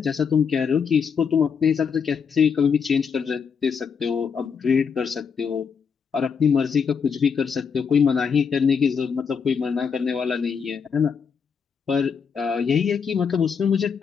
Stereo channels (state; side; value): quieter; right; 6.3 dB